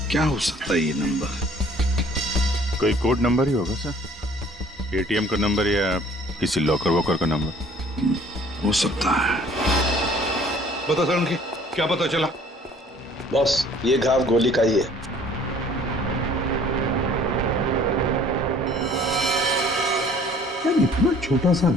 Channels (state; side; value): normal; both; correlation 0.54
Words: क्या हो सकता है ये नंबर? कोई कोड नंबर ही होगा सर, एटीएम का नंबर या किसी लॉकर वॉकर का नंबर हो सकता है। बता सर, उनकी क्या पता चला? बॉस, ये घाव गोली का ही है। यार, इतना छोटा सा